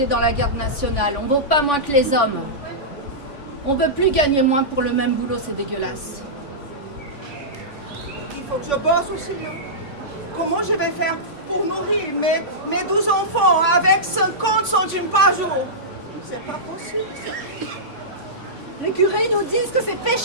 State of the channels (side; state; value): right; late; 3.5 ms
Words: dans la garde nationale. On vaut pas moins que les hommes. On veut plus gagner moins pour le même boulot, c'est dégueulasse. Il faut que je bosse aussi, hein? comment je vais faire pour nourrir mes 12 enfants avec 50 centimes par jour? C'est pas possible, ça. Les curés nous disent que c'est